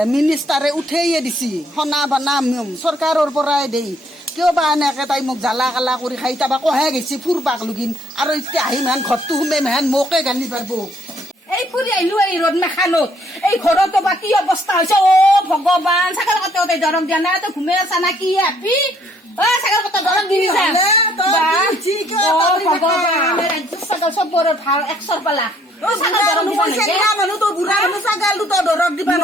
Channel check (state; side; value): normal; both; correlation 0.65